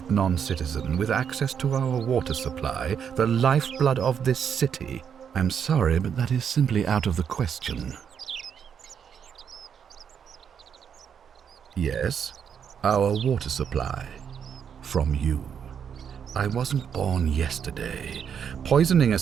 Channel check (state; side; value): quieter; left; 7.7 dB